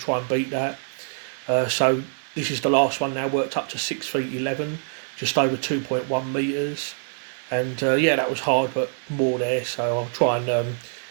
and beat that. So this is the last one now, worked up to 6 feet 11, just over 2.1 metres, and yeah, that was hard but more there, so I'll try and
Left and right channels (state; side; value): silent; left; digital silence